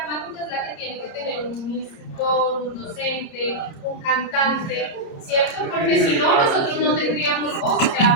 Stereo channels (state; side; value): late; right; 29 ms